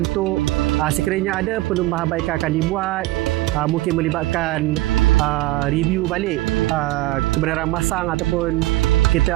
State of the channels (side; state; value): left; quieter; 18.3 dB